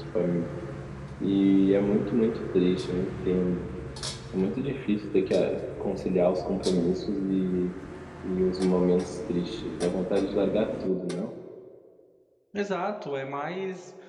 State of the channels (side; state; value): both; identical; correlation 1.00